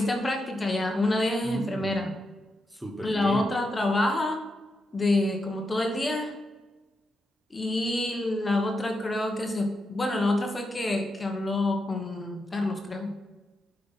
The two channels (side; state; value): both; normal; correlation 0.85